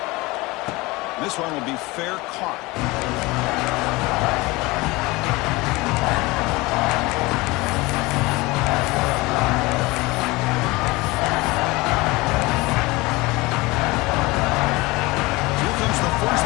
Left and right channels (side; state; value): right; quieter; 22.5 dB